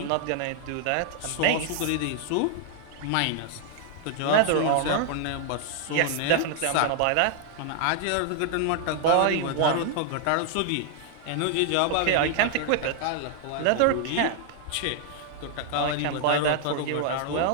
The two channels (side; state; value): both; different; correlation 0.00